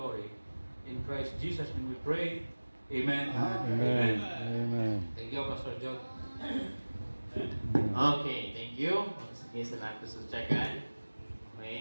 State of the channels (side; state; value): both; inverted; correlation -1.00